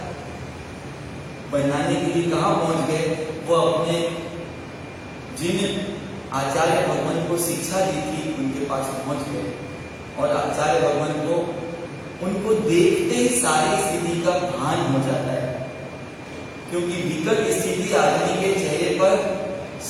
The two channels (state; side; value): identical; both; correlation 1.00